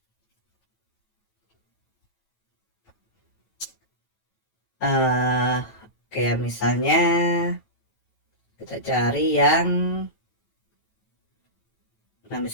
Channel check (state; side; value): late; right; 9.1 ms